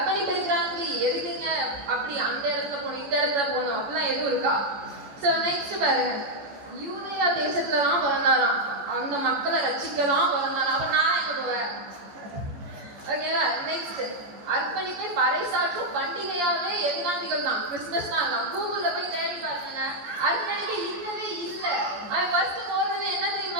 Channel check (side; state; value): left; late; 14 ms